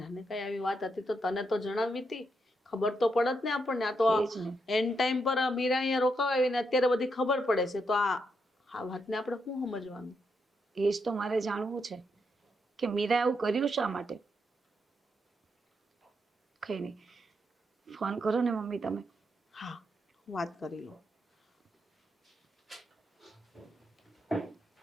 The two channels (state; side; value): normal; both; correlation 0.81